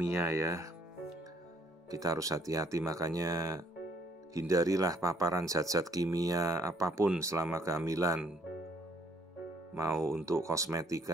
ya. Kita harus hati-hati, makanya hindarilah paparan zat-zat kimia apapun selama kehamilan. Mau untuk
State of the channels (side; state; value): both; normal; correlation 0.65